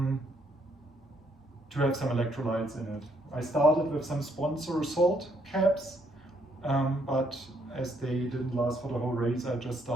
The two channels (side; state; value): both; normal; correlation 0.71